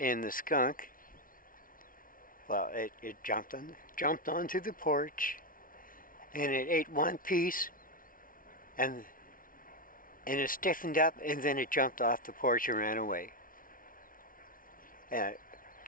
the skunk, well, it jumped onto the porch, and it ate one piece, and it stiffened up, and then it jumped off the porch and ran away. And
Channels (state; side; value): late; right; 0.40 ms